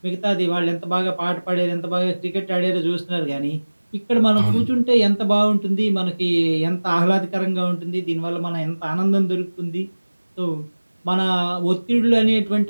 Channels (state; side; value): inverted; both; correlation -1.00